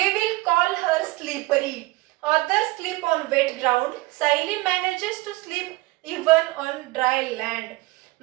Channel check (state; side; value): quieter; left; 21.3 dB